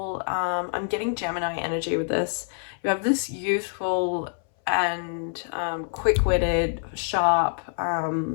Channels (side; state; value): right; silent; 61 dB below the other